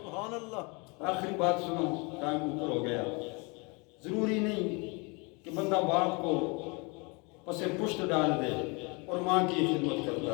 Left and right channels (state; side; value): quieter; right; 29.9 dB